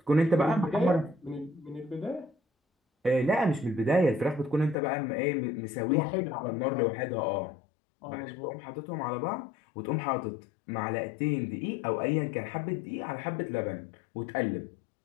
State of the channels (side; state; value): right; drops out; at 4.8 s